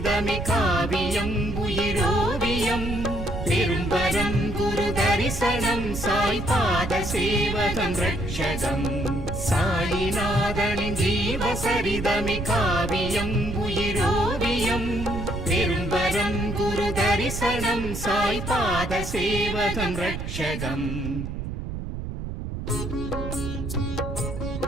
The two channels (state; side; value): noise; right; rumble, 6 dB below the sound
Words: காவியம் உயிரோவியம். பெரும்பரம் குரு தரிசனம் சாய் பாத சேவகம் ரட்சகம். சாயிநாதனின் ஜீவசரிதமே காவியம் உயிரோவியம். பெரும்பரம் குரு தரிசனம் சாய் பாத சேவகம் ரட்சகம்.